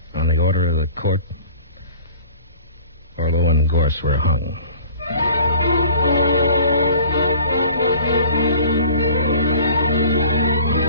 on the order of the court, Orlo and Gorse were hung.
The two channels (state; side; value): inverted; both; correlation -0.46